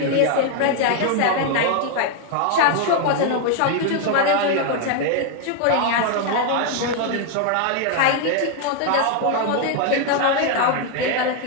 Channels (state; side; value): different; both; correlation 0.01